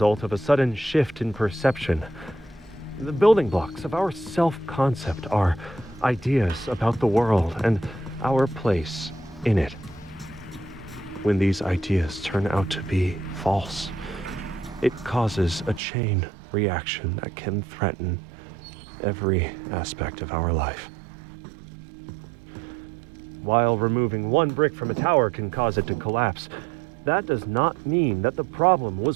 of a sudden shift in perception. The building blocks of our self-concept are ideas about the world and our place in it. When these ideas turn out to be false, it causes a chain reaction that can threaten every aspect of our life. While removing one brick from a tower can cause it to collapse, that does not mean that the problem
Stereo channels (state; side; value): drops out; left; at 15.8 s